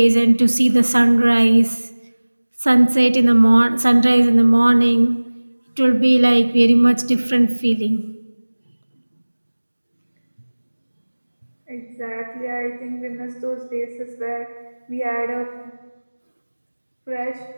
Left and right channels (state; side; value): inverted; both; correlation -1.00